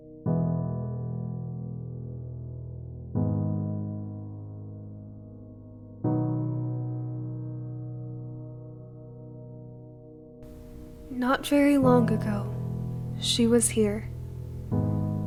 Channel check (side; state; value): both; identical; correlation 1.00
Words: Not very long ago, she was here.